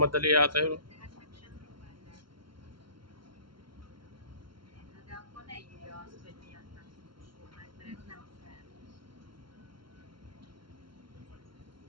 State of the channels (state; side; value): late; left; 0.73 ms